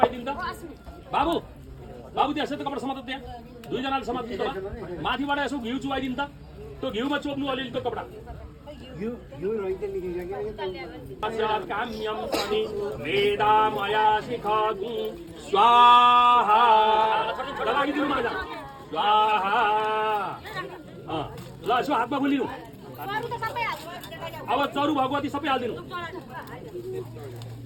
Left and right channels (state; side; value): identical; both; correlation 1.00